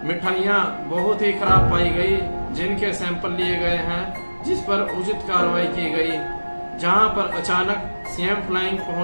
मिठाइयां बहुत ही खराब पाई गई जिनके सैंपल लिए गए हैं, जिस पर उचित कार्रवाई की गई। जहां पर अचानक सीएम फ्लाइंग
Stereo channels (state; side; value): inverted; both; correlation -1.00